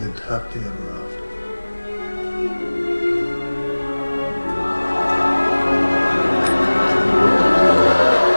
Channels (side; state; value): both; inverted; correlation -1.00